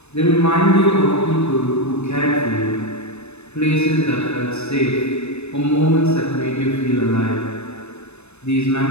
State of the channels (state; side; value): late; right; 0.81 ms